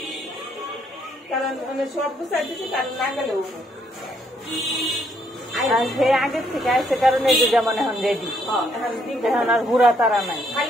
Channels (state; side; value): normal; both; correlation 0.71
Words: কারণ মানে সব গুছাই দিছি কারণ না গেলেও আর সে আগের থেকে আসছে কারণে এই যে যেমন এখন রেডি এখন আর হুড়া তারা নাই